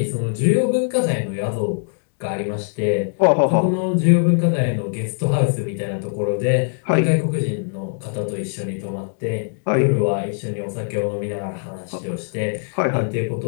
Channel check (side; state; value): right; silent; digital silence